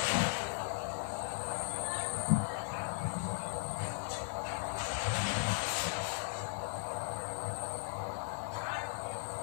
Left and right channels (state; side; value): silent; right; digital silence